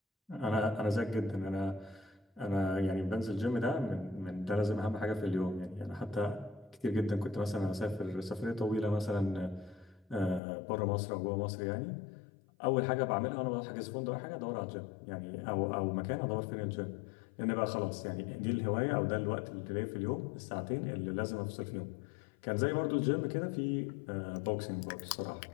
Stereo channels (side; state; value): right; drops out; at 10.4 s